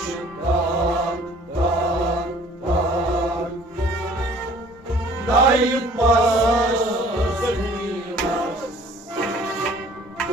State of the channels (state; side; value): normal; both; correlation 0.53